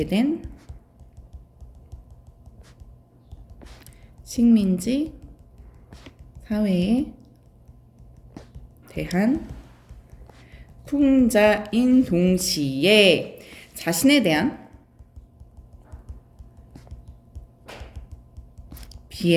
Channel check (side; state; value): both; identical; correlation 1.00